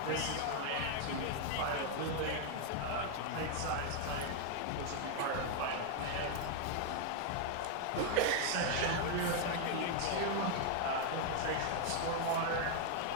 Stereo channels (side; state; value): both; different; correlation 0.00